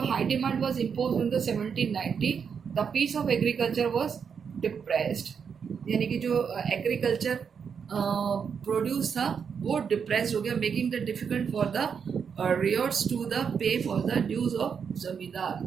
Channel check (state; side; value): quieter; left; 6.7 dB